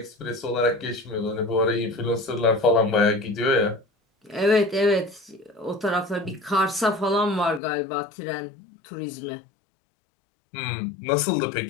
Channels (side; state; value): right; drops out; at 7.6 s